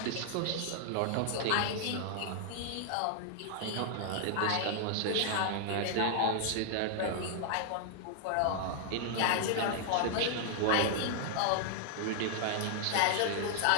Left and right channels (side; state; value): both; different; correlation 0.00